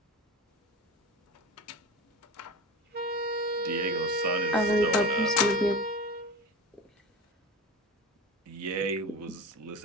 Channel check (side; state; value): both; normal; correlation 0.29